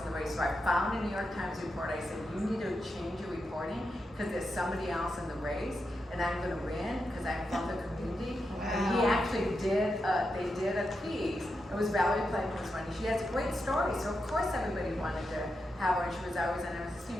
the race. So I found a New York Times report. I said, you need to change your reporting because there's somebody else in the race. and I'm gonna win because I'm from the community. And he actually did, they did a piece. It was Valerie Plankton's one. She has a great story, so of course everybody wanted to have her, and she was always on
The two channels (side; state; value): both; normal; correlation 0.86